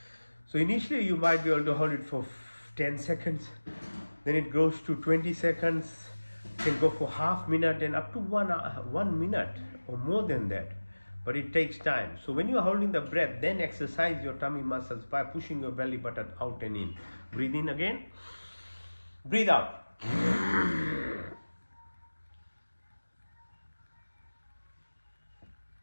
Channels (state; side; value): inverted; both; correlation -1.00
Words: So initially you might be able to hold it for 10 seconds, then it goes to 20 seconds, can go for half minute and up to 1 minute or more than that. but it takes time. So when you are holding the breath, then exercise your tummy muscles by pushing your belly button out and in. Breathe in again. Breathe out.